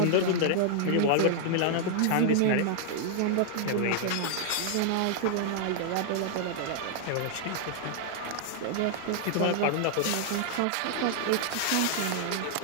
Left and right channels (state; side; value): different; both; correlation -0.01